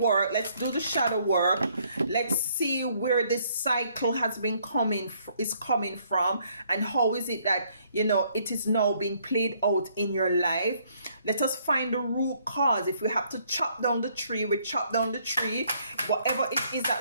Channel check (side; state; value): both; inverted; correlation -0.67